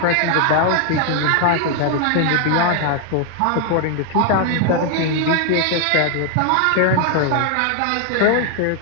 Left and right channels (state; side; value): different; both; correlation 0.00